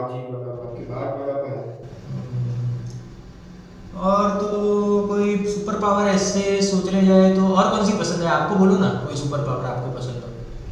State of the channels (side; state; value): both; identical; correlation 1.00